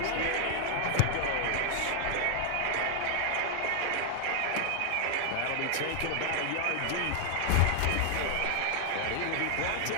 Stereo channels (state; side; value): different; both; correlation 0.00